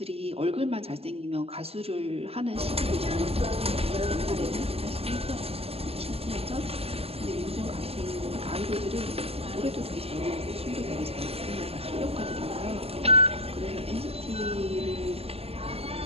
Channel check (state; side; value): late; left; 0.29 ms